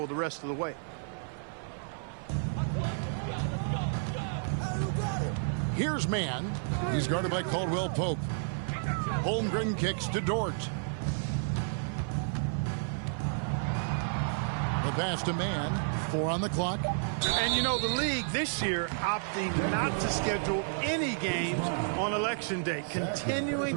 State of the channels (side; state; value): left; silent; 57 dB below the other